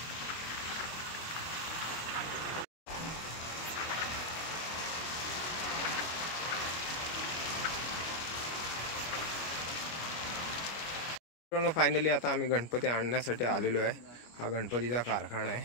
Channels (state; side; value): late; right; 25 ms